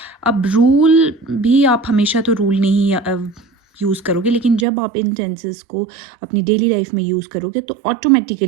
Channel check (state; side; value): drops out; left; at 4.7 s